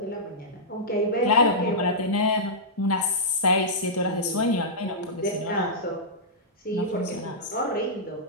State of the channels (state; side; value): normal; both; correlation -0.13